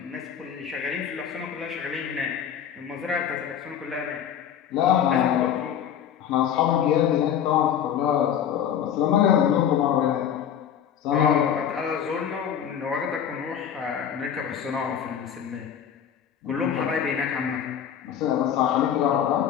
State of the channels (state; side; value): quieter; right; 9.0 dB